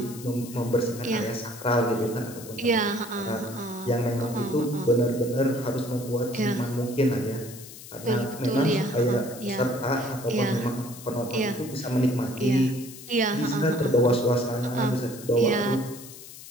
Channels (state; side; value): noise; left; hiss, 15 dB below the sound